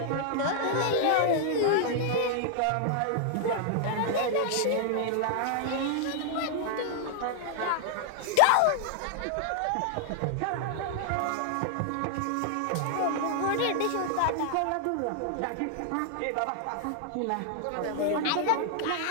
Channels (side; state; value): both; different; correlation -0.01